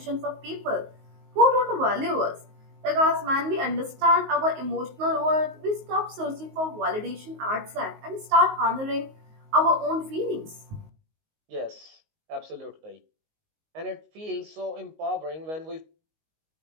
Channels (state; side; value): late; left; 19 ms